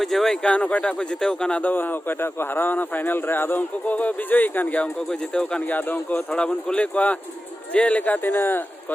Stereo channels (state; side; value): normal; both; correlation 0.94